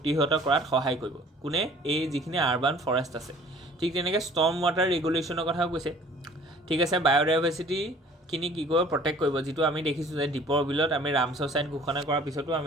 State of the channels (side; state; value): both; normal; correlation 0.51